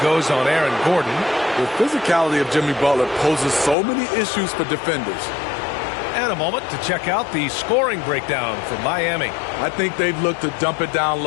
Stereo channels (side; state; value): right; drops out; at 3.8 s